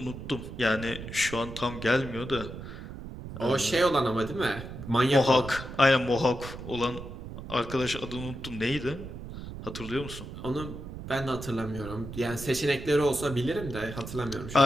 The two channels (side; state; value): right; noise; rumble, 10 dB below the sound